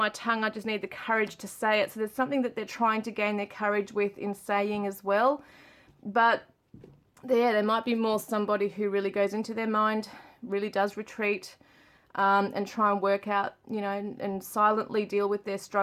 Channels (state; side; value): identical; both; correlation 1.00